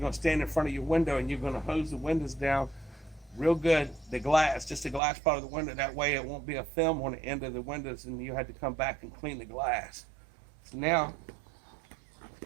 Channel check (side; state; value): left; drops out; at 5.0 s